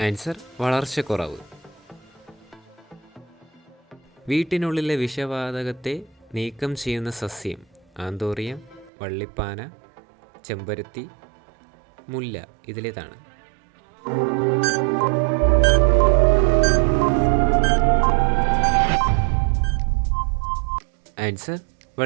ആൻസർ വളർച്ചക്കുറവ്. വീട്ടിനുള്ളിലെ വിഷവാതകത്തെ നീക്കം ചെയ്യുന്ന സസ്യം: ആന്തോറിയം, വള്ളിപ്പാന, ചെമ്പരത്തി, മുല്ല. ഇതിലേതാണ്? ആൻസർ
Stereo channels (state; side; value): drops out; left; at 8.9 s